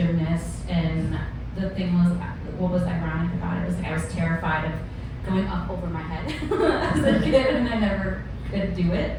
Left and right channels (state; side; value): identical; both; correlation 1.00